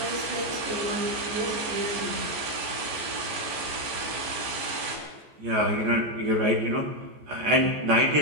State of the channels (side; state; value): left; late; 14 ms